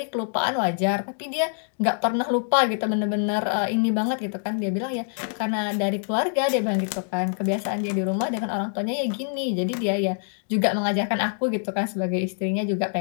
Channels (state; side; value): silent; right; digital silence